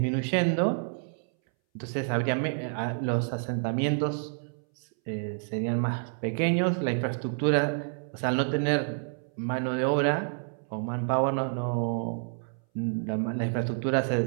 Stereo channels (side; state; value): left; silent; 59 dB below the other